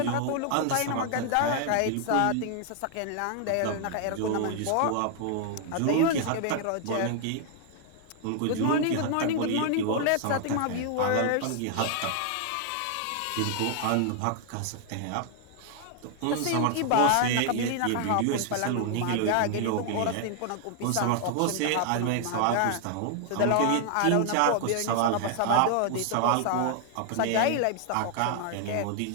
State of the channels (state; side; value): different; both; correlation 0.00